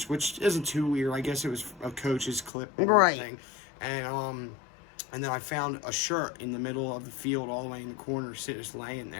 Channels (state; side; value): drops out; right; at 2.5 s